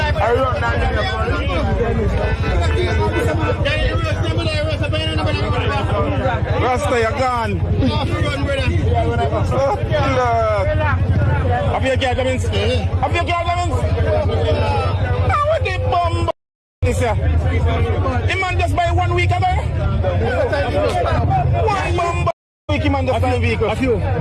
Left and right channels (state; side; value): identical; both; correlation 1.00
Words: I run down Rasta, you're gone. Oh, Lord. Have you got them? Have you got them? How would they bomb this year? The man just buy 1 week ago? 1 bomb week, he man just buy a vehicle. A few.